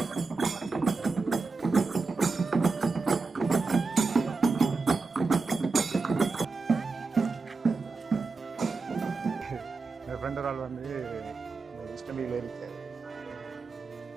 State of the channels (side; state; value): left; quieter; 4.1 dB